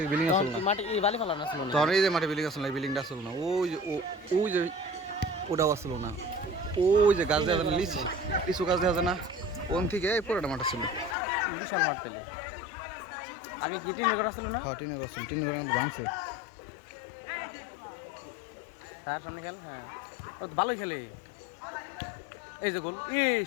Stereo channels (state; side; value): drops out; right; at 11.2 s